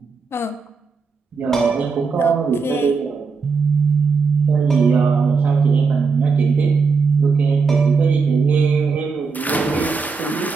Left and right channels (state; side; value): quieter; left; 4.9 dB